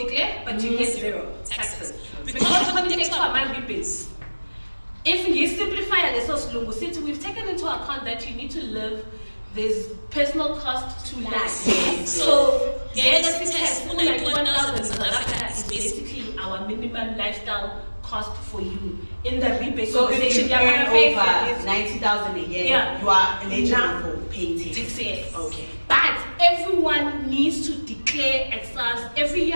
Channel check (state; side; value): inverted; both; correlation -1.00